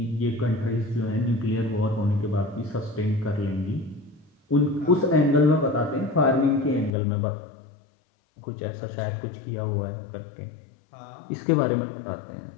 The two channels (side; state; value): right; drops out; at 6.9 s